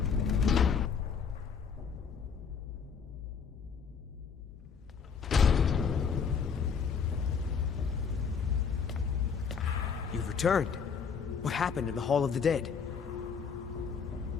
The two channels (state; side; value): quieter; right; 6.3 dB